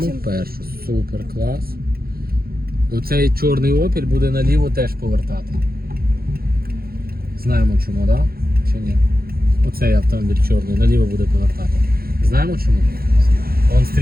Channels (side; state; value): left; late; 0.44 ms